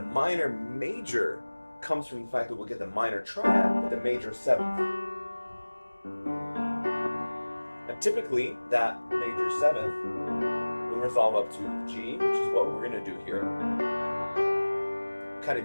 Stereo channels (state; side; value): inverted; both; correlation -1.00